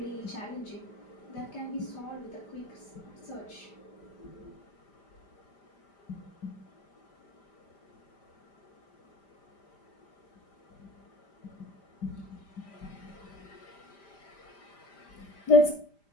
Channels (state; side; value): late; right; 5.0 ms